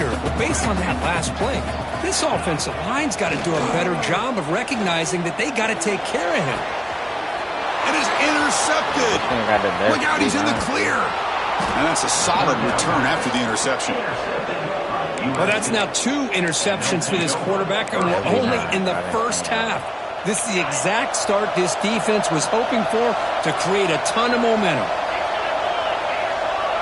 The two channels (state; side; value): identical; both; correlation 1.00